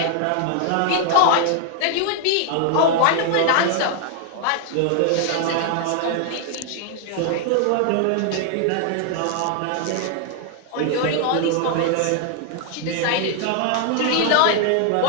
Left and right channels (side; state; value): both; different; correlation 0.00